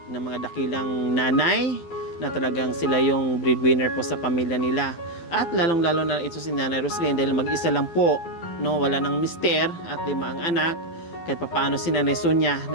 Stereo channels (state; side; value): late; right; 12 ms